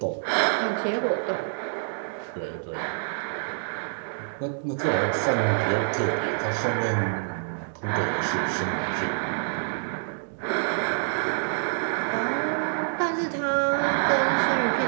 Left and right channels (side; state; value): left; silent; digital silence